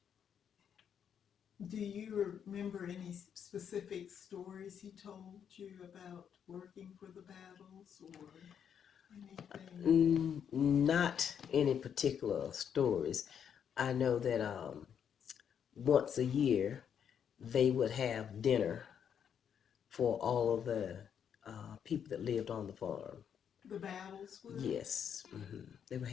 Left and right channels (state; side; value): quieter; right; 8.2 dB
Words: Do you remember any specific stories he told you about working for the battles or anything? Not any particular stories. I know that once a year they would have dinner for all of the people that lived on the farm. The battles would? Yes, they would